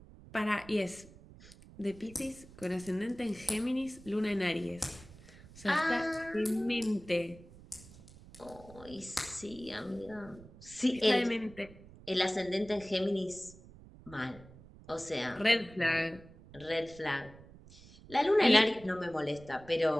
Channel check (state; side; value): noise; right; rumble, 20 dB below the sound